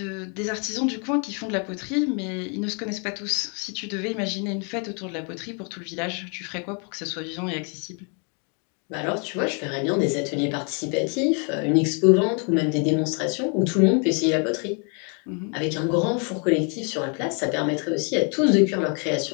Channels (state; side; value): quieter; right; 37.6 dB